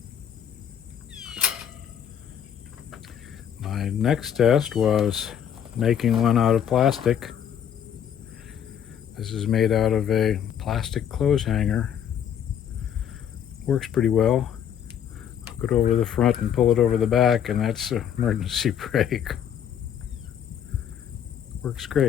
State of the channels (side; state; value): right; quieter; 9.0 dB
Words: My next test was making one out of plastic. This is made out of a plastic clothes hanger. Works pretty well. Put it over the front and pull it over the back, and that's an emergency brake. Works